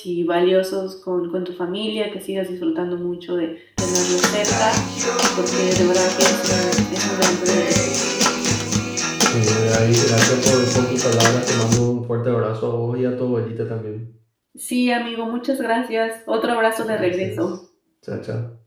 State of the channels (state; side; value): identical; both; correlation 1.00